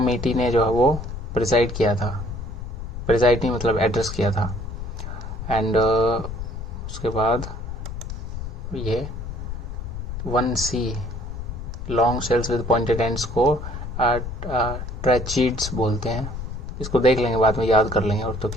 ने जो है वो प्रिसाइड किया था। प्रिसाइड नहीं मतलब एड्रेस किया था। एंड उसके बाद ये 1C, long shells with pointed ends को ट्रैचीड्स बोलते हैं। इसको देख लेंगे, बाद में याद कर लेंगे और तो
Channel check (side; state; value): left; noise; rumble, 7 dB below the sound